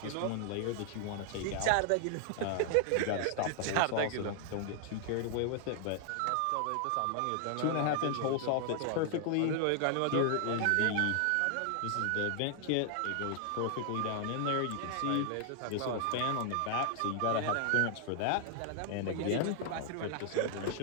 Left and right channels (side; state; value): both; different; correlation 0.00